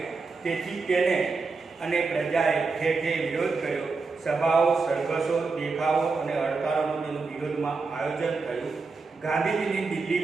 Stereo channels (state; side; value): quieter; left; 4.2 dB